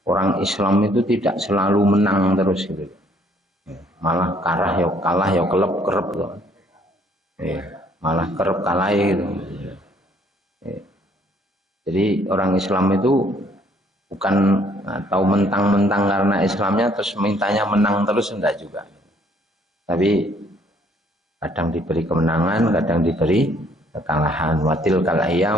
orang Islam itu tidak selalu menang terus gitu. Malah kalah ya kelep kerep tuh. Malah kerep kalah gitu. Jadi orang Islam itu bukan atau mentang-mentang karena Islamnya terus mintanya menang terus, enggak juga. Tapi kadang diberi kemenangan, kadang diberi kekalahan. Watilkal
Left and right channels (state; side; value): normal; both; correlation 0.63